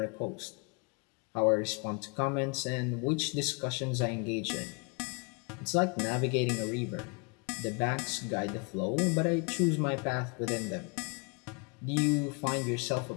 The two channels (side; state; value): right; quieter; 33.4 dB